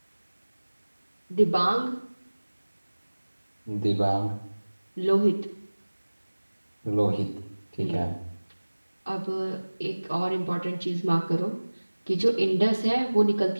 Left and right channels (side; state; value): both; inverted; correlation -1.00